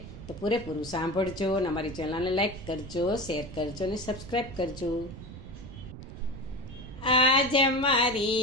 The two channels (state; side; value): noise; right; rumble, 13 dB below the sound